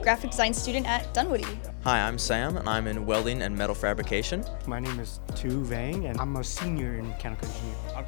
graphic design student at Dunwoody. Hi, I'm Sam, and I'm in welding and metal fabrication. My name is Tu Vang, and I'm a senior in mechanical engineering. I'm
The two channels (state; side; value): silent; right; digital silence